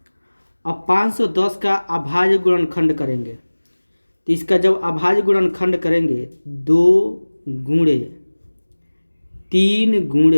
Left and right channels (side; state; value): both; inverted; correlation -1.00